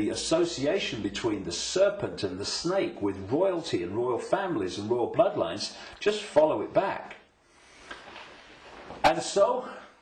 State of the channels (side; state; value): both; identical; correlation 1.00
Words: association between the serpent and the snake with royalty and royal families and royal bloodlines, just follow it back. And so